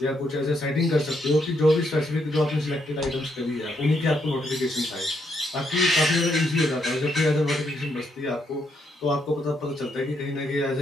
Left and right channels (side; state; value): both; normal; correlation 0.76